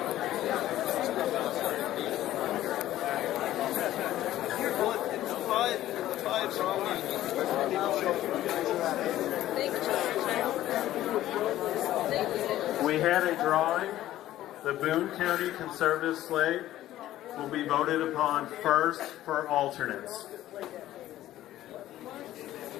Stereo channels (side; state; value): right; quieter; 13.9 dB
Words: We had a drawing. The Boone County Conservative slate will be voted upon first for alternates.